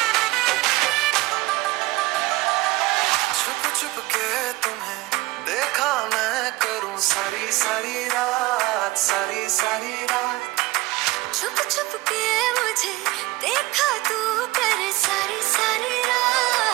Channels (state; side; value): quieter; left; 20.1 dB